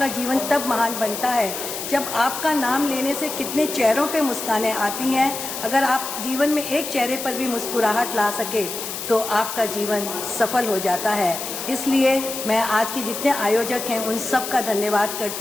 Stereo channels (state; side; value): noise; left; hiss, 6 dB below the sound